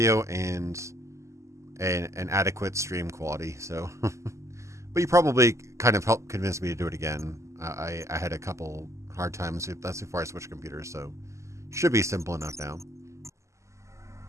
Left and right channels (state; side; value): late; left; 0.14 ms